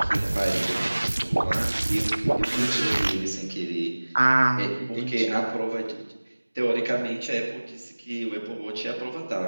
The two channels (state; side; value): inverted; both; correlation -1.00